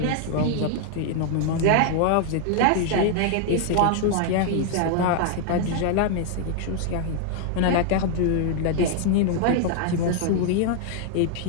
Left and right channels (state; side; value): different; both; correlation 0.00